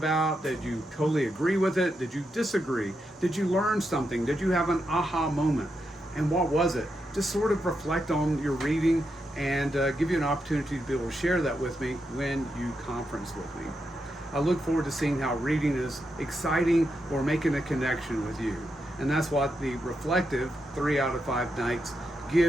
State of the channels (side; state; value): both; normal; correlation 0.84